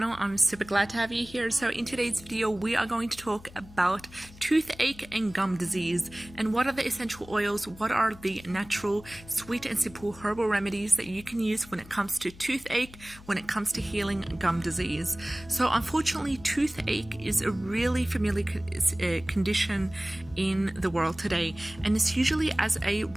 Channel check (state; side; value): noise; left; hum, 20 dB below the sound